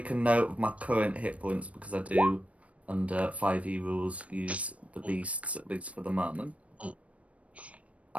a note of my current hit points because I do, under 5e rules, use the beasts at least for the moment.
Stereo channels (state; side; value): late; left; 0.065 ms